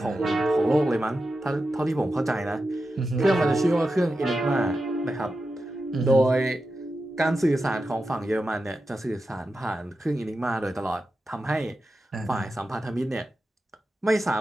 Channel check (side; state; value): both; normal; correlation 0.90